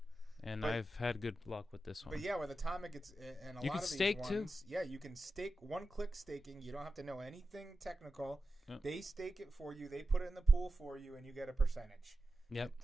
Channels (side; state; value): both; normal; correlation 0.92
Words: And But- I've had good luck with this one. But yeah, with Atomic, it's and a You lot can of these stake, too. ones, yeah, you can stake one-click staking. You don't have to know anything technical. Yep. They stake it for you. They put it in the pool for you, and you get a percentage. Yep.